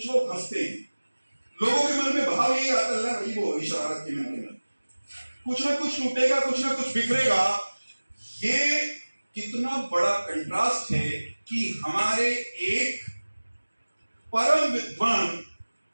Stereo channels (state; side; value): inverted; both; correlation -1.00